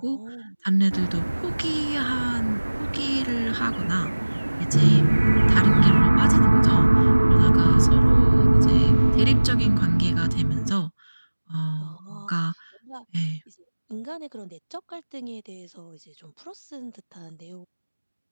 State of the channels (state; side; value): inverted; both; correlation -1.00